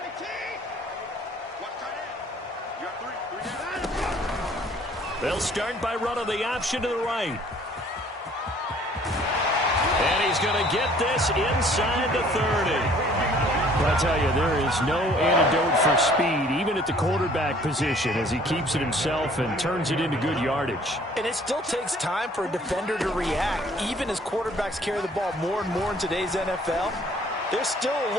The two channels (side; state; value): both; normal; correlation 0.56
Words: They'll start by running the option to the right. And he's going to get this inside the 30. But I tell you, there is no antidote for speed, even at the quarterback position, as he keeps it himself and turns it into good yardage. And it still takes time for a defender to react, even as quarterbacks carry the ball more and more in today's NFL. They're still a